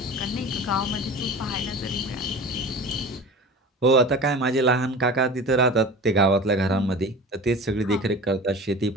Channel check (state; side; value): normal; both; correlation 0.36